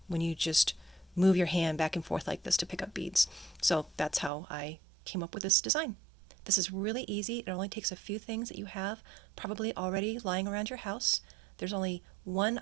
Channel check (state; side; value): drops out; left; at 4.3 s